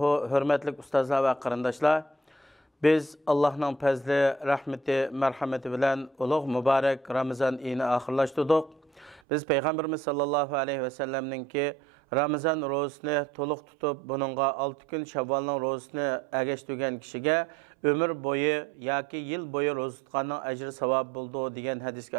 Hürmetlik ustazlar ve qarindoshlar. Biz Allah'ın fazli, rahmeti, merhameti bilen ulug' mübarek Ramazan ayini ahirlashtirdik. Biz Peygamberimiz sallallahu aleyhi ve sellemninki Ramazan rozasini to'liq tutib, buningga 6 kun Shavvolning rozasini agashtirgan kishiga ömür boyu yoki yil boyu roza tutganning ajri savob bo'ldi degan hadisga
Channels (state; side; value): drops out; left; at 9.2 s